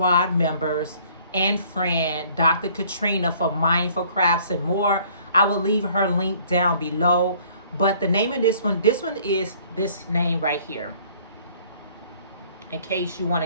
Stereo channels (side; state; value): both; inverted; correlation -0.57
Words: members and friend, Dr. Katrina, for Mindful Crafts and More. I will leave her link down below. But the name of this one is this name right here. In case you want